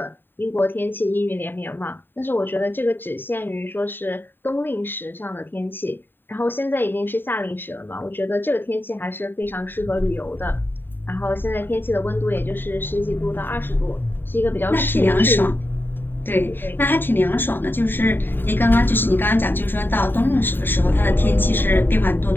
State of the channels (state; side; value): late; right; 0.095 ms